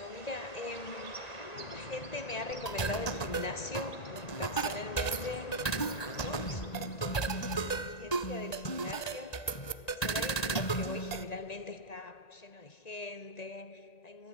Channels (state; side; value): late; right; 1.9 ms